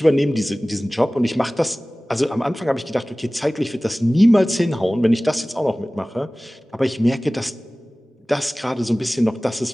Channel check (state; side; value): normal; both; correlation 0.98